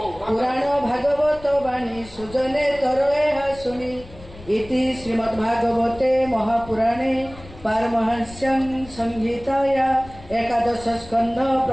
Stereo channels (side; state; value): left; noise; rumble, 18 dB below the sound